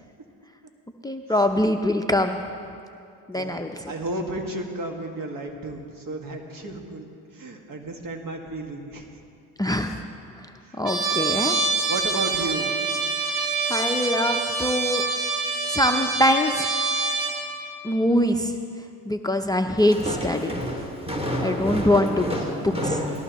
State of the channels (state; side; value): normal; both; correlation 0.49